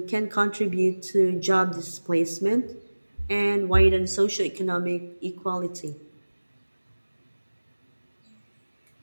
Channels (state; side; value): inverted; both; correlation -1.00